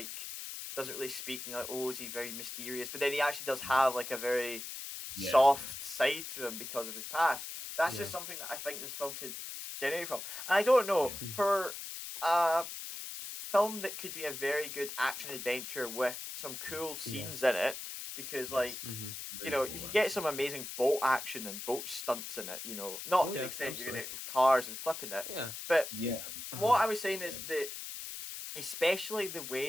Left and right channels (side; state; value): left; noise; hiss, 8 dB below the sound